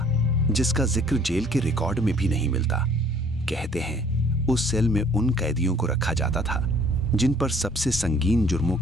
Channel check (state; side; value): normal; both; correlation 0.57